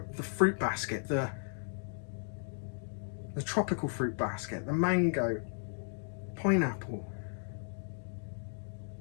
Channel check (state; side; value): silent; right; digital silence